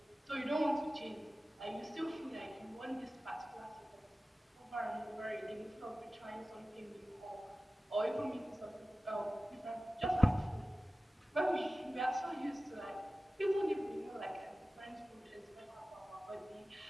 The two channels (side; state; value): both; normal; correlation 0.96